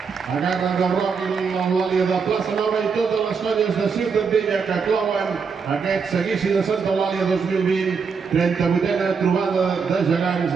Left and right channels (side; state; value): left; quieter; 5.6 dB